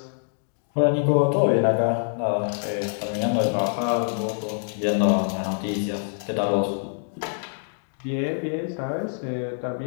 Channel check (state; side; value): silent; right; digital silence